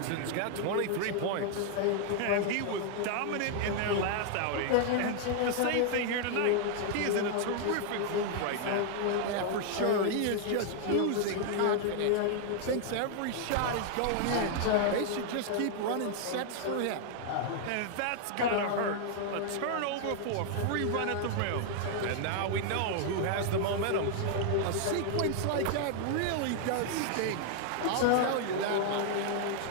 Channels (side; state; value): both; different; correlation 0.00